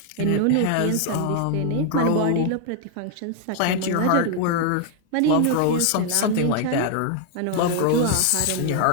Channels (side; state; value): both; different; correlation 0.00